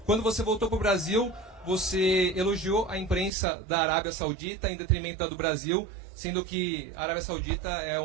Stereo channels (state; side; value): drops out; left; at 3.3 s